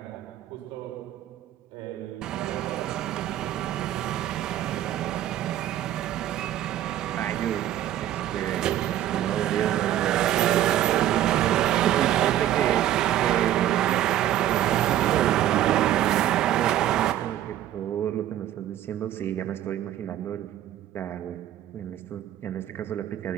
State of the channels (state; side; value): quieter; left; 12.4 dB